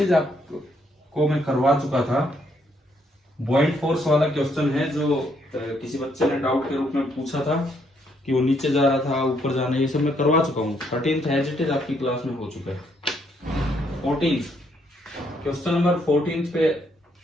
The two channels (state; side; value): normal; both; correlation 0.72